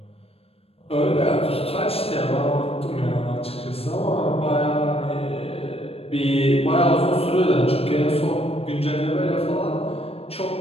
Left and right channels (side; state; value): right; late; 0.28 ms